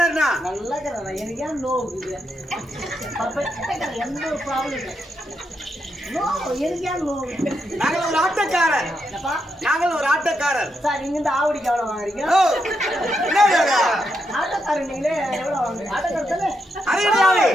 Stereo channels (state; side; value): normal; both; correlation 0.82